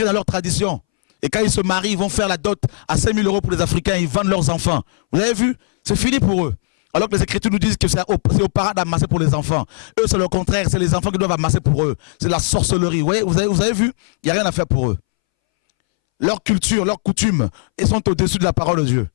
dans leurs traditions. Et quand ils se marient, ils vont faire la dot à 5 000 € pour les Africains. Ils vendent leurs enfants. Vous avez vu? C'est fini pour eux. Alors que les Écritures nous disent que c'est aux parents d'amasser pour les enfants. Eux, c'est le contraire. C'est les enfants qui doivent amasser pour eux. C'est la sorcellerie. Vous avez vu? Il n'y a rien à faire pour eux. Leur culture, leurs coutumes, ils sont au-dessus de la parole de Dieu.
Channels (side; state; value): right; silent; 65 dB below the other